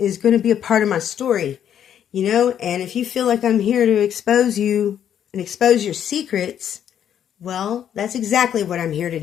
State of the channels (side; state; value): right; quieter; 9.6 dB